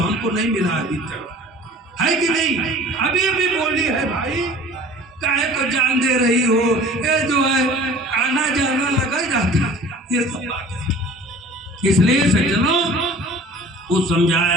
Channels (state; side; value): normal; both; correlation 0.46